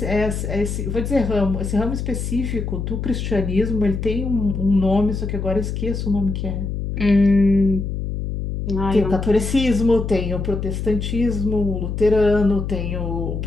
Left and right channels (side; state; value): left; noise; hum, 4 dB below the sound